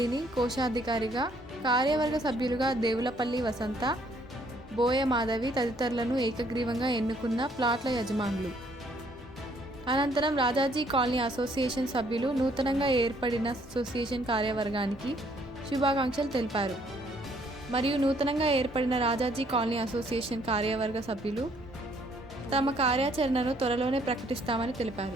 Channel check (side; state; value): both; normal; correlation 0.65